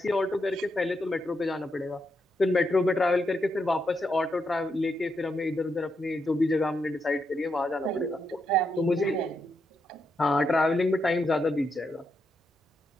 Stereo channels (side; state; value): both; normal; correlation 0.82